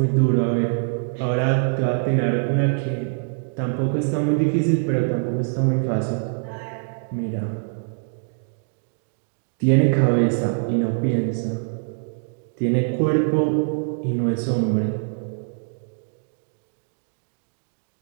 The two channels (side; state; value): left; silent; digital silence